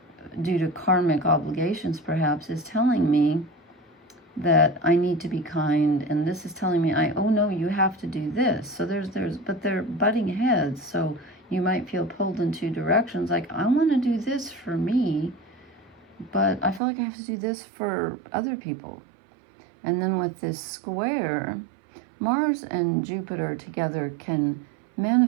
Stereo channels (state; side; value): drops out; left; at 16.8 s